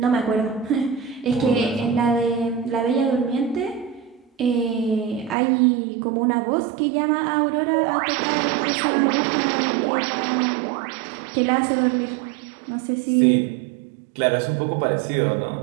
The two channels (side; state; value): left; drops out; at 5.4 s